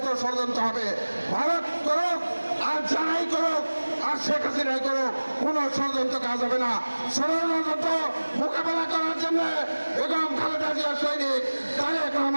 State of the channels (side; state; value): both; inverted; correlation -1.00